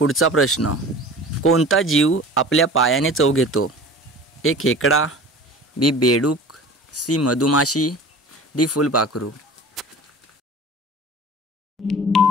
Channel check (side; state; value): both; normal; correlation 0.40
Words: प्रश्न. कोणता जीव आपल्या पायाने चव घेतो? ए खेकडा, बी बेडूक, सी मधुमाशी, डी फुलपाखरू.